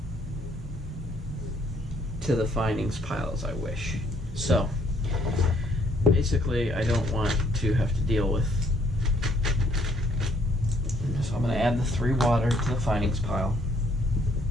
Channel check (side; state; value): both; normal; correlation 0.66